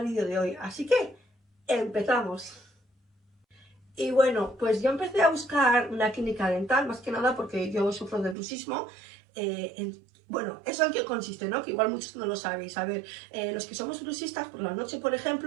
vídeo de hoy, así que empezamos. Y bueno, pues yo empecé a buscar una clínica dental, más que nada porque yo sufro de bruxismo. Bueno, ¿eso en qué consiste, no? Que igual muchos no lo sabéis. A ver, los que somos bruxistas, por la noche, por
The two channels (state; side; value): drops out; left; at 8.3 s